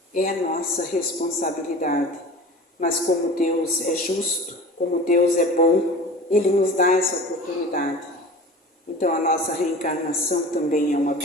É a nossa responsabilidade. Mas como Deus é justo, como Deus é bom, Ele nos dá essa oportunidade. Então a nossa reencarnação também é uma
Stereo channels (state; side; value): normal; both; correlation 0.38